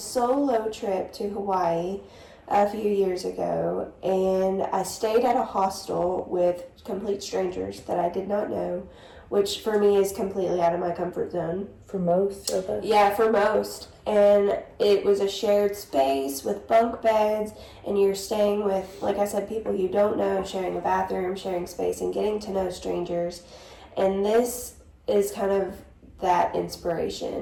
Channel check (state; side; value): identical; both; correlation 1.00